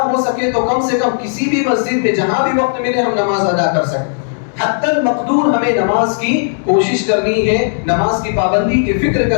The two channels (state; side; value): silent; right; digital silence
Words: ہو سکے تو کم سے کم کسی بھی مسجد میں جہاں بھی وقت ملے ہم نماز ادا کر سکیں. حتی المقدور ہمیں نماز کی کوشش کرنی ہے، نماز کی پابندی کی فکر